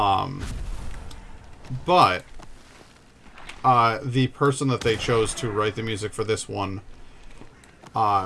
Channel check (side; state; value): both; identical; correlation 1.00